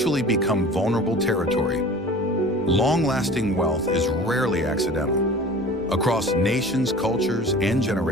become vulnerable territory? Long-lasting wealth is rarely accidental. Across nations, cultures, and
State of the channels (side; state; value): both; normal; correlation 0.42